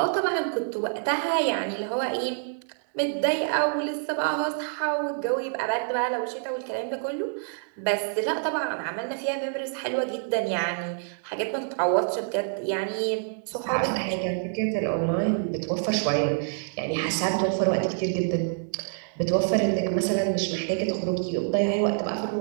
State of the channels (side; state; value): left; silent; digital silence